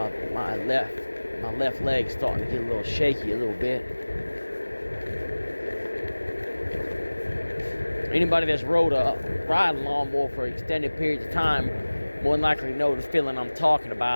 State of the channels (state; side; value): inverted; both; correlation -1.00